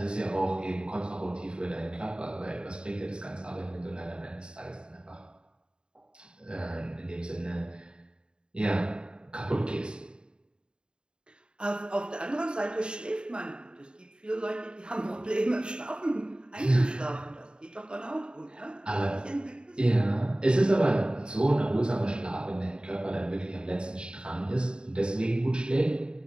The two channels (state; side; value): late; left; 0.050 ms